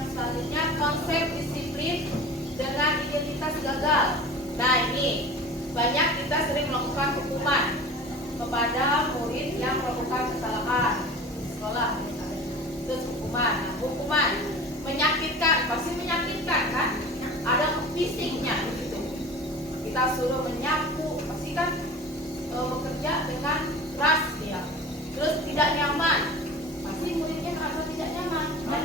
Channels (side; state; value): both; normal; correlation 0.38